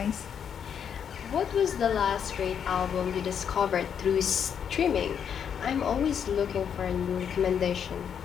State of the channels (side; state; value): right; quieter; 7.9 dB